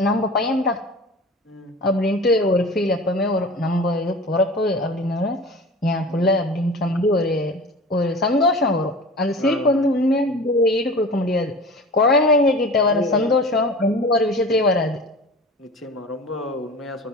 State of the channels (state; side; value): normal; both; correlation 0.37